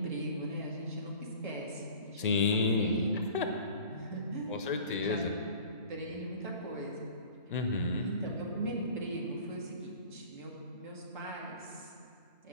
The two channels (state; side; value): inverted; both; correlation -0.45